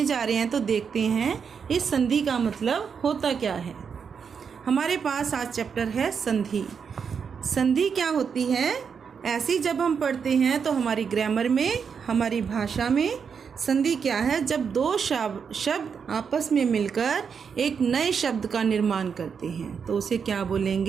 जा रहे हैं, तो देखते हैं इस संधि का मतलब होता क्या है। हमारे पास आज चैप्टर है संधि। संधि क्या होती है? ऐसी जब हम पढ़ते हैं तो हमारी ग्रामर में, हमारी भाषा में संधि क्या है? जब दो शब्द आपस में मिलकर एक नए शब्द का निर्माण करते हैं तो उसे क्या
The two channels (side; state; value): left; quieter; 6.5 dB